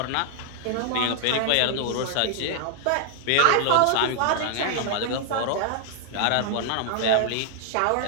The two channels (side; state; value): both; different; correlation -0.01